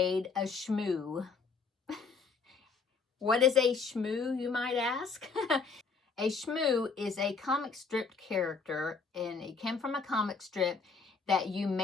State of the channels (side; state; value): right; quieter; 4.9 dB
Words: a shmoo. What is a shmoo, you might ask? A shmoo is a comic strip character, and it came from a comic strip that you